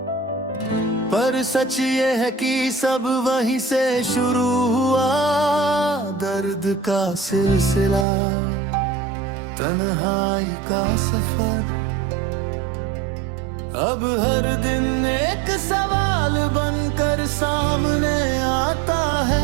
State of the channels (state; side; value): drops out; left; at 8.1 s